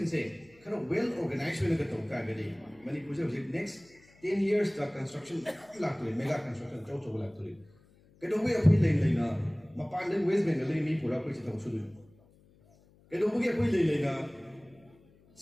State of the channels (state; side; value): noise; left; hum, 29 dB below the sound